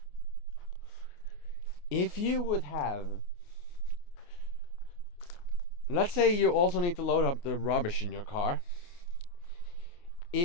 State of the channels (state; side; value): late; right; 29 ms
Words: If you would have, let's say you also need to load up the rubbish in your car.